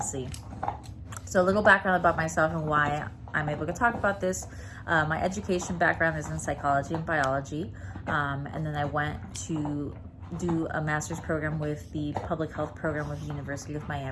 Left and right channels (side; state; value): both; identical; correlation 1.00